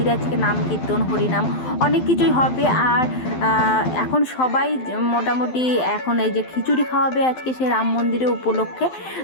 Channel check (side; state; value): right; late; 12 ms